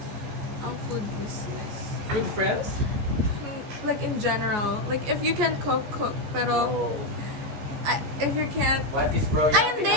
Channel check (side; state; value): left; late; 14 ms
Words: ang food business. With friends? Like in general, like if you can cook. Pero if you can't, What is bro ay